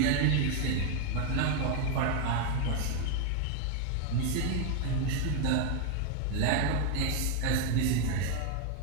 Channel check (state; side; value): different; both; correlation 0.01